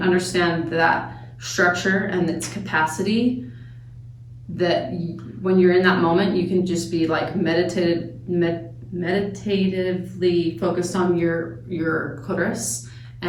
understand that structure and its capacity, that when you're in that moment, you can just be like meditatively focused on your clitoris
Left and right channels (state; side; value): identical; both; correlation 1.00